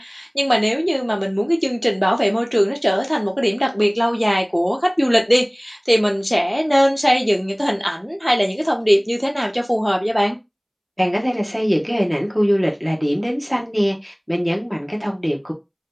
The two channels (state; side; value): identical; both; correlation 1.00